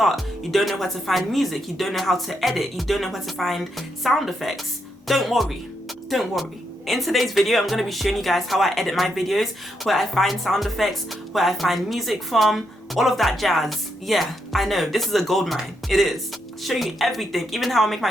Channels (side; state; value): both; normal; correlation 0.80